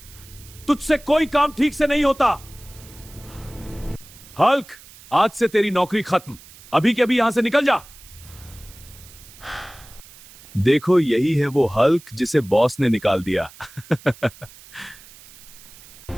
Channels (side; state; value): right; noise; hiss, 21 dB below the sound